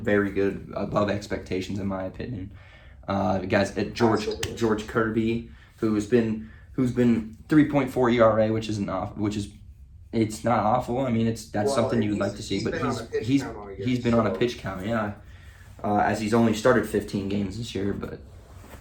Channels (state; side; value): identical; both; correlation 1.00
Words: good, above expectations in my opinion. Guys at George Kirby, who's been 3.4 ERA, which is it's not awful. I mean, that's something you would like to see, but he's been on a pitch count, yeah. As he's only started 15 games this year, but